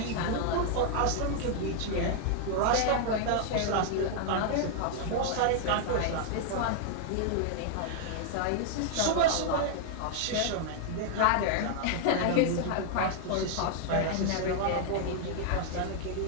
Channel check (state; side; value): different; both; correlation 0.00